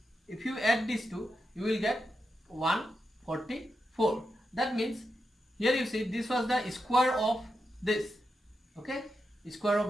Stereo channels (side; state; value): both; normal; correlation 0.87